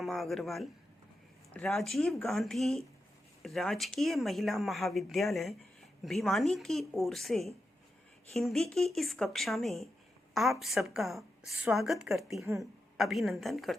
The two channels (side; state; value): both; normal; correlation 0.88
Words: अग्रवाल राजीव गांधी राजकीय महिला महाविद्यालय भिवानी की ओर से हिंदी की इस कक्षा में आप सबका स्वागत करती हूँ, अभिनंदन